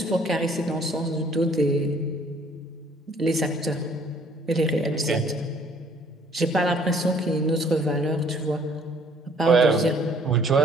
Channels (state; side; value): normal; both; correlation 0.59